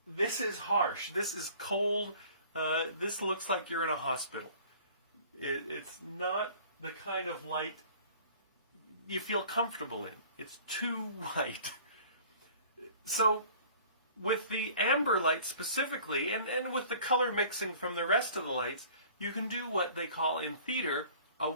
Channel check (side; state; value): both; inverted; correlation -0.49